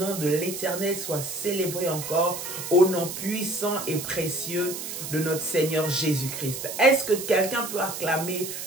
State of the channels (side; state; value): right; noise; hiss, 7 dB below the sound